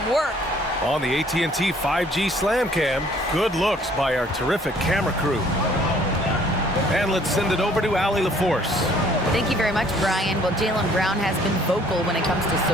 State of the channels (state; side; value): normal; both; correlation 0.59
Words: work. On the AT&T 5G Slam Cam, good looks by our terrific camera crew. And let's send it over to Allie LaForce. Thank you very much, Brian. Well, Jaylen Brown has been vocal when it comes to